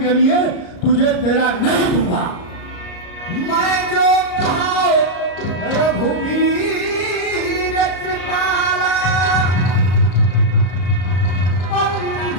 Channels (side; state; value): right; late; 34 ms